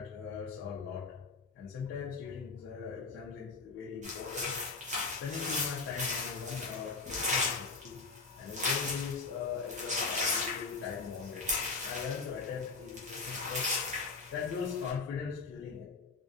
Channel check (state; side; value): quieter; right; 4.3 dB